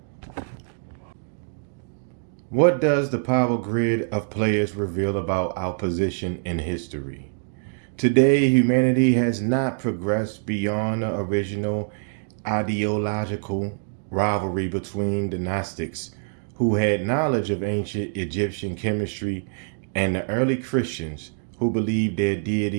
What does the power grid of players reveal about our position in history? Today, humanity has not progressed beyond the original ideological rivalry between the Gnostics, who had knowledge of ancient Egyptian chemistry, and the early Christians, who believed their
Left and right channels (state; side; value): silent; left; digital silence